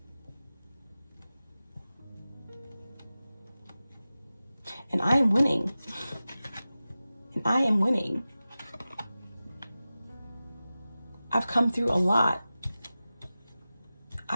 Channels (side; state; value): both; inverted; correlation -0.95